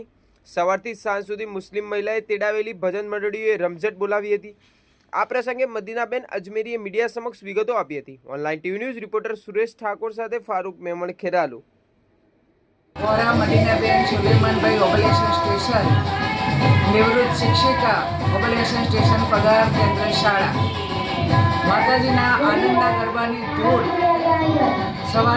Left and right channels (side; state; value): both; identical; correlation 1.00